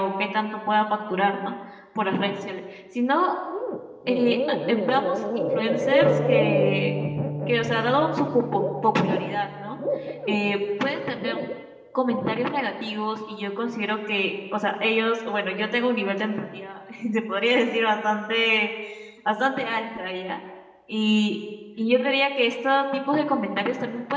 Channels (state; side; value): identical; both; correlation 1.00